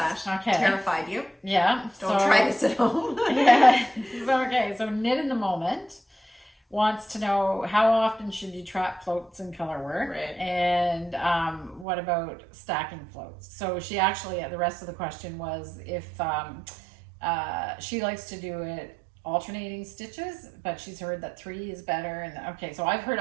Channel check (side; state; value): left; drops out; at 11.9 s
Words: That. Okay. Terrified you. Yeah. Don't try this at home. Okay, so Knit in the Moment wants to know how often should you trap floats in color work, right? And what about stacking floats? So she actually, the rest of the question was if she likes to do it alternating stitches, but she's heard that 3 is better. And okay, so I've heard